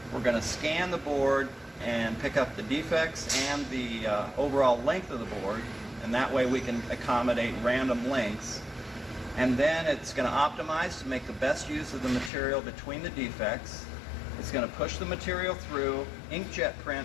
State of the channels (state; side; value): drops out; right; at 12.3 s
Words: We're going to scan the board and pick up the defects and the overall length of the board, and that way we can accommodate random lengths. And then it's going to optimize to make the best use of the material between the defects. It's going to push the material through, inkjet